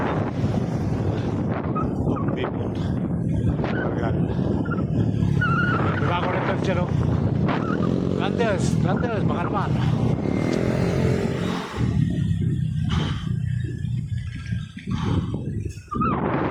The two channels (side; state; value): both; identical; correlation 1.00